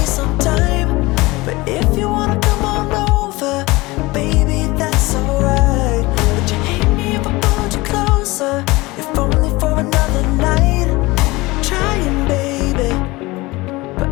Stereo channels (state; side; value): quieter; right; 21.7 dB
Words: some time. But if you wanna come on over, baby, that's alright. Would you hate me if I pulled you closer, if only for another night? I'm trying, baby, but